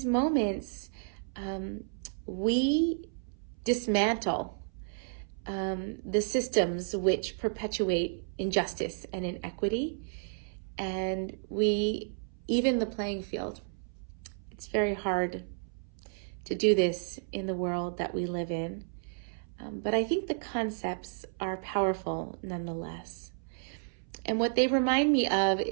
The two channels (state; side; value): silent; left; 56 dB below the other